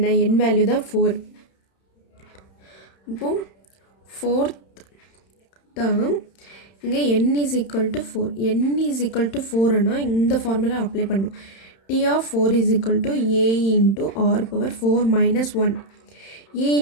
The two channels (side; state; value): right; late; 31 ms